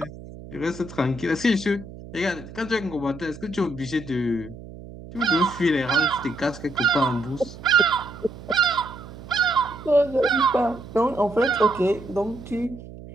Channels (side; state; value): right; noise; hum, 15 dB below the sound